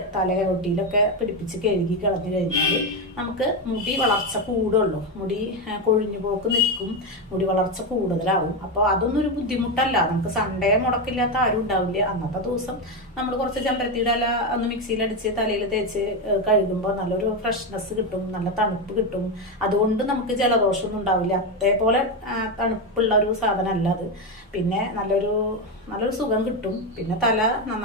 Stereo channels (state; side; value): normal; both; correlation 0.10